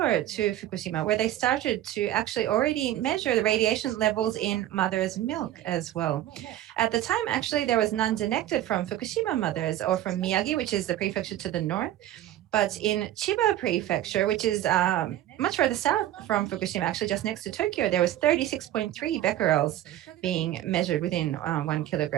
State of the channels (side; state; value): left; quieter; 13.2 dB